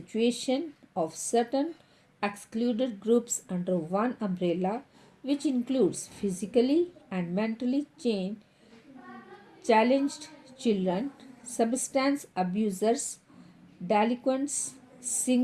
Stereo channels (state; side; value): identical; both; correlation 1.00